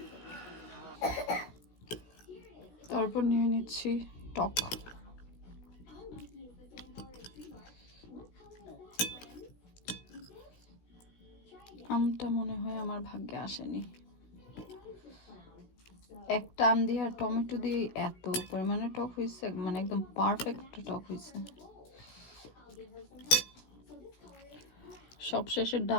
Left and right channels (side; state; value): right; late; 17 ms